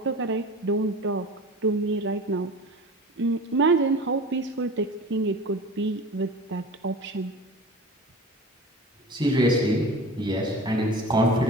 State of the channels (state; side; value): normal; both; correlation 0.36